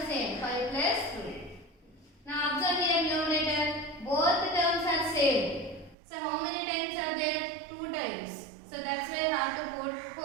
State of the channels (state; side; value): drops out; left; at 6.0 s